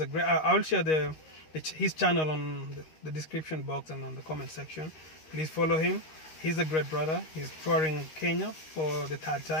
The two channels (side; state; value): right; late; 13 ms